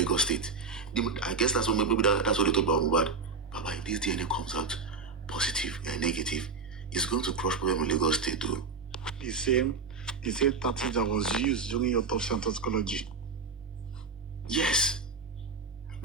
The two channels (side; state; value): left; quieter; 4.8 dB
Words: State. I guess that's what that's what they talk about Mohbad. Baba, if this DNA comes out positive and negative, it's going to crush problem in Lagos State too. The same tactic that was used during your autopsy and toxicology. Yes.